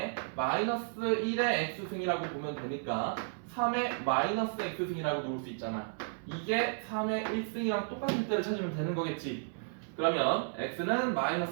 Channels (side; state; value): left; silent; 56 dB below the other